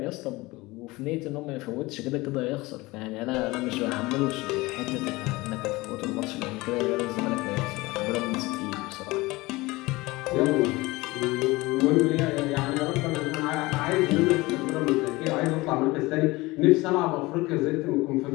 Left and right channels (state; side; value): quieter; right; 21.5 dB